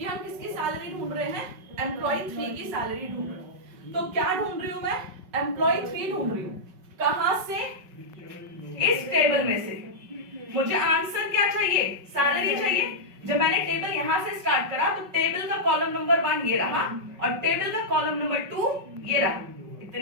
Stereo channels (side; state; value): left; late; 5.3 ms